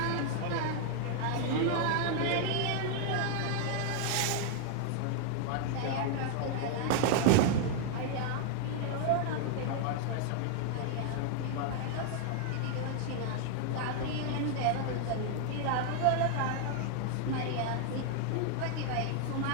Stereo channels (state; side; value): different; both; correlation 0.00